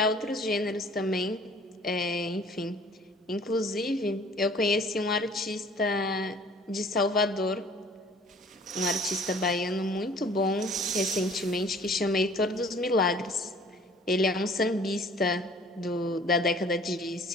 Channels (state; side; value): normal; both; correlation 0.52